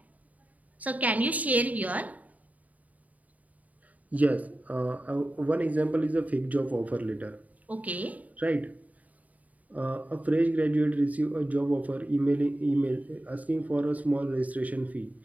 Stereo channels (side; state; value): left; late; 0.073 ms